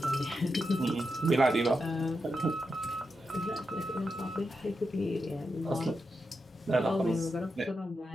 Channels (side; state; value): both; normal; correlation 0.87